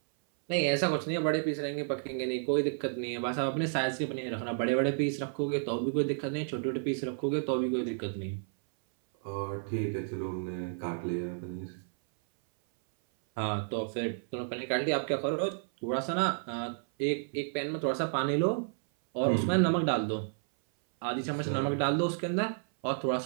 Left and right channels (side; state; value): left; silent; 57 dB below the other